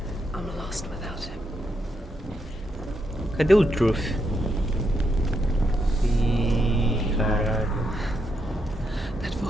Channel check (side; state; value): both; normal; correlation 0.81